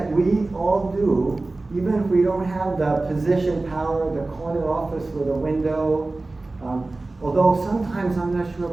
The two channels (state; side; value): quieter; left; 3.2 dB